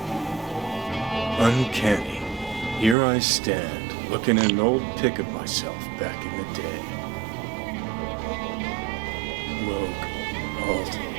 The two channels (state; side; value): drops out; left; at 3.0 s